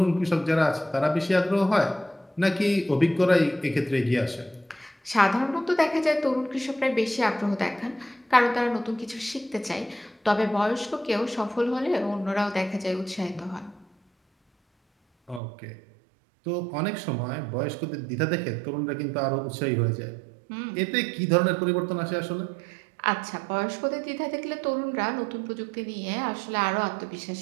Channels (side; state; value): left; drops out; at 15.4 s